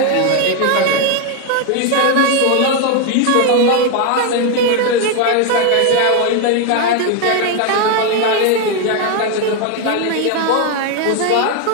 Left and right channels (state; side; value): different; both; correlation 0.01